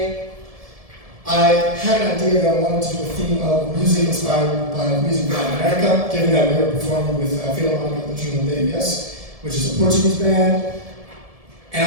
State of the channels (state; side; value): late; left; 1.7 ms